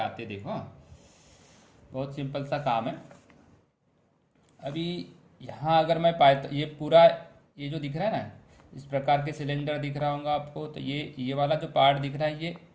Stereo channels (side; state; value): both; identical; correlation 1.00